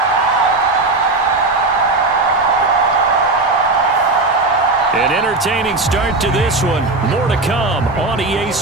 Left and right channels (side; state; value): left; quieter; 3.2 dB